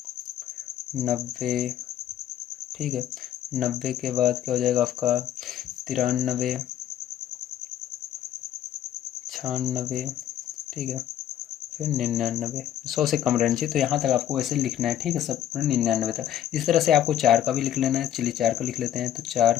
90, ठीक है। 90 के बाद क्या हो जाएगा आपका 93, 96, ठीक है, फिर 99। 100 से कम रहना चाहिए, तो यहाँ तक आपको वैसे लिखना है, ठीक है, सब 99 तक। इस तरह से आपको 4 का भी लिख लेना है। चलिए 4 का लिख लेते हैं। तो 4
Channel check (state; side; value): quieter; right; 11.1 dB